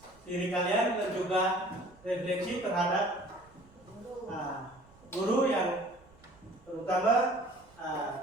diri kalian dan juga refleksi terhadap guru yang terutama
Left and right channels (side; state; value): right; noise; rumble, 27 dB below the sound